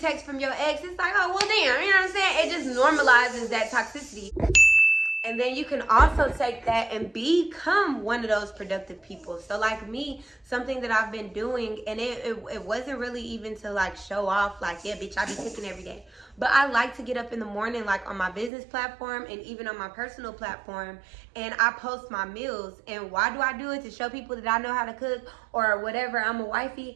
text from your ex, it's like, oh, well, damn, you know what I'm saying? It just normalizes that toxicity. And then you can also take that and become one of those productive people. So like me, something that I've been doing, and it wasn't really even to like show off, like, yeah, bitch, I be cooking every day. But I like to get up in the morning, like on my business platform and even on my personal platform, and I post my meals. And why do I do it? To show people that I know how to cook or whatever, I'm a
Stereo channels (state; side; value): drops out; left; at 18.5 s